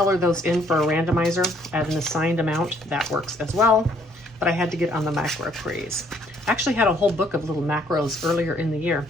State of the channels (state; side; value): normal; both; correlation 0.65